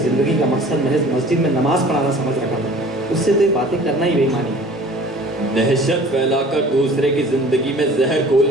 जिंदगी का मकसद महज मस्जिद में नमाज पढ़ाना समझ रखा था, उससे तो ये बातें करना ही बेईमानी है। दहशत फैलाकर दूसरे की जिंदगी में जहर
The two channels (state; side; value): normal; both; correlation 0.47